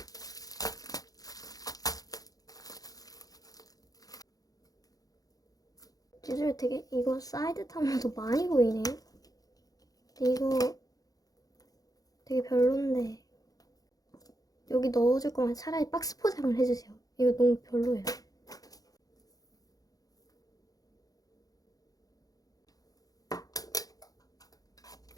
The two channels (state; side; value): late; right; 0.18 ms